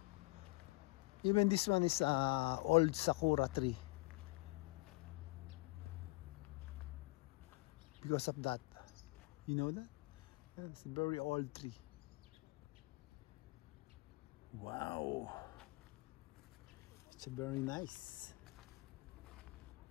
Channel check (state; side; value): quieter; right; 23.8 dB